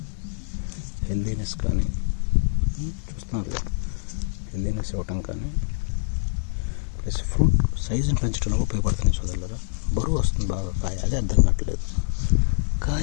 హెల్దీనెస్ కానీ చూస్తున్నారు, హెల్దీనెస్ ఇవ్వటం కానీ ప్లస్ ఫ్రూట్ సైజుని పెంచడంలో ఉపయోగపడుతుంది సోదరులారా. బరువు వస్తుంది బాగా కాయ, అదే అర్థం కావట్లేదు.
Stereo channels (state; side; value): silent; right; digital silence